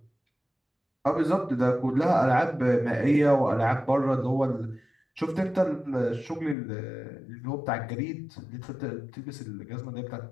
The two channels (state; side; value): drops out; right; at 6.6 s